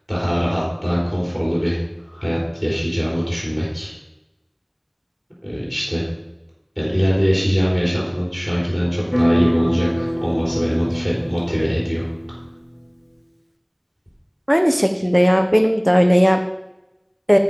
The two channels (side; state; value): both; identical; correlation 1.00